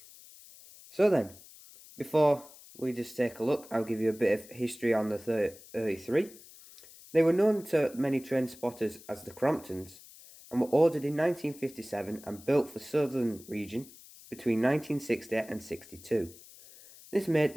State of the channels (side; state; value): left; noise; hiss, 20 dB below the sound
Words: So then, before we just take a look, I'll give you a bit of history on the 33. They were known to many train spotters as the Cromptons, and were ordered in 1957 and built for Southern region between 1960 and 62. This made